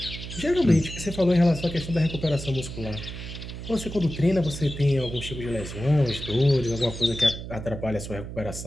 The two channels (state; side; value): noise; right; hum, 9 dB below the sound